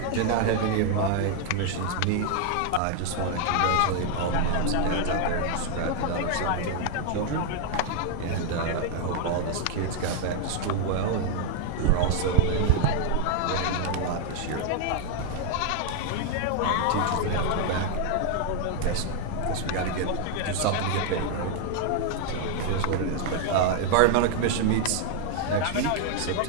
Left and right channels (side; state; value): both; different; correlation 0.00